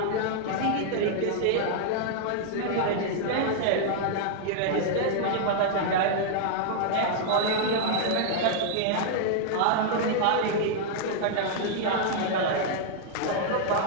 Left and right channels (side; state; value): both; different; correlation -0.01